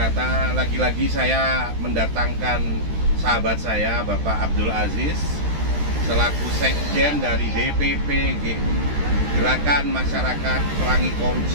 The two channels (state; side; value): late; left; 13 ms